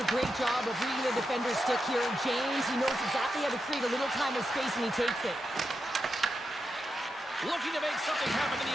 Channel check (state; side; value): normal; both; correlation 0.87